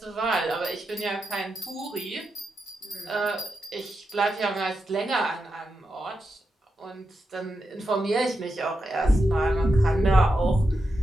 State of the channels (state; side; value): normal; both; correlation 0.87